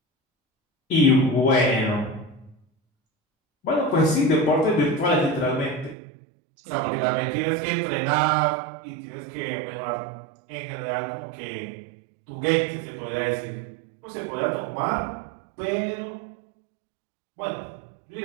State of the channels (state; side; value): drops out; left; at 6.0 s